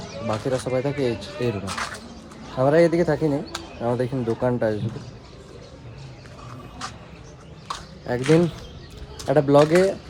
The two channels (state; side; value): identical; both; correlation 1.00